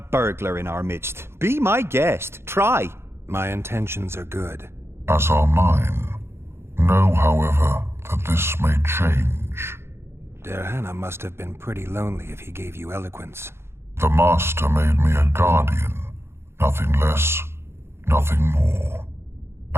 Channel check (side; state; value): left; late; 0.12 ms